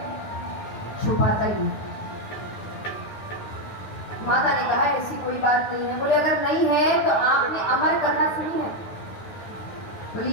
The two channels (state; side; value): late; right; 9.6 ms